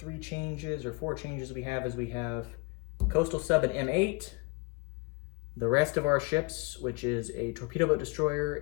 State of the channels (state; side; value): quieter; right; 27.5 dB